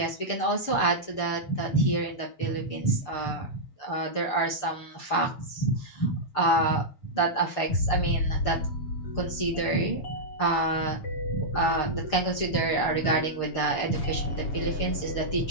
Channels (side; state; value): right; late; 6.6 ms